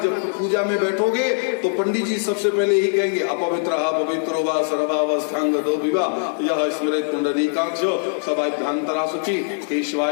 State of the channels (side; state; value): right; silent; digital silence